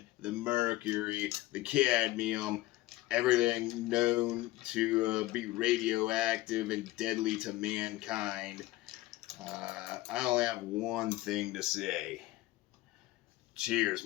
the mercury, the cadmium, everything known to be radioactive and deadly to mankind. I only have one thing to say. Cheers,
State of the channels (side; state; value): right; quieter; 17.8 dB